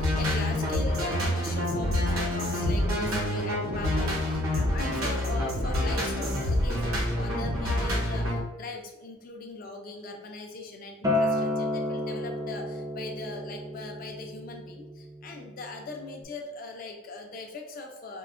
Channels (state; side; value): normal; both; correlation 0.61